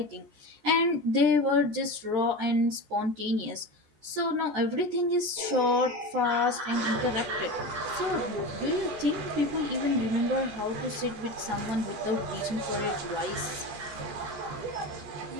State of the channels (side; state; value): left; late; 14 ms